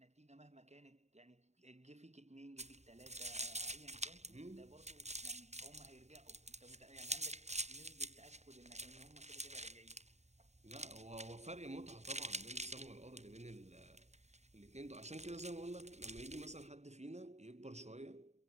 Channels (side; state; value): left; late; 0.32 ms